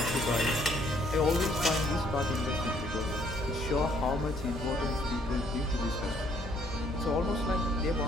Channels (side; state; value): both; normal; correlation 0.65